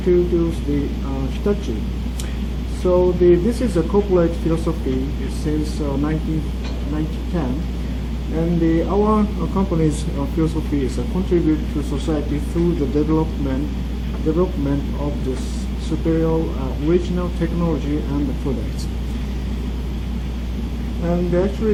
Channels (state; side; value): identical; both; correlation 1.00